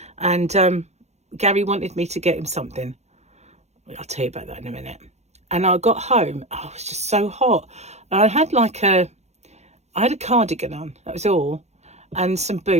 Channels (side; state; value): left; late; 0.32 ms